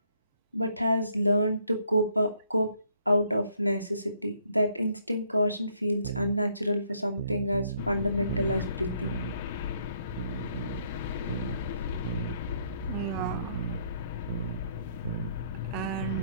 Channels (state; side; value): inverted; both; correlation -0.69